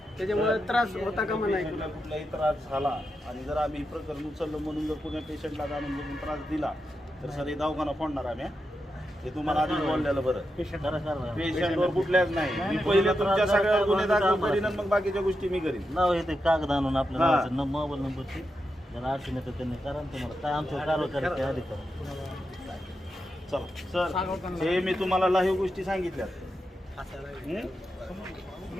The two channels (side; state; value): both; normal; correlation 0.87